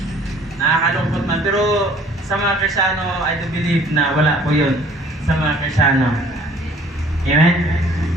Nakakalungkot man. Pero sa mga Kristiyano, I do believe na wala po yun sa mga Kristiyano. Amen?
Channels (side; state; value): both; normal; correlation 0.55